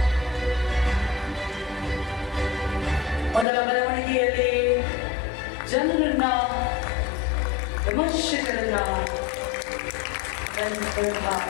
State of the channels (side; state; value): right; drops out; at 3.5 s